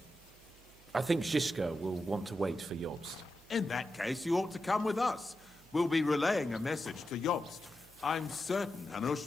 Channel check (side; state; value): right; noise; hum, 26 dB below the sound